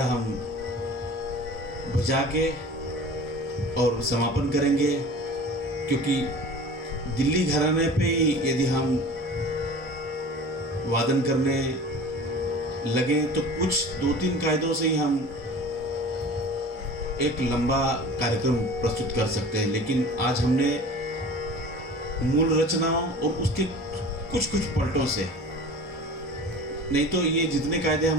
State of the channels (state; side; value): normal; both; correlation 0.40